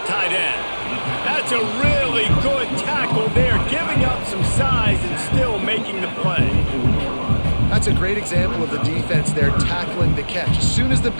end. That's a really good tackle there, giving up some size and still making the play. That's a great example of the defense there tackling the catch. As soon as the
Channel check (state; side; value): inverted; both; correlation -1.00